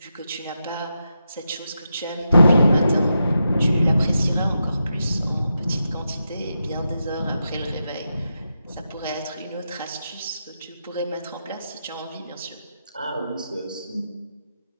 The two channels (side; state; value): both; inverted; correlation -0.86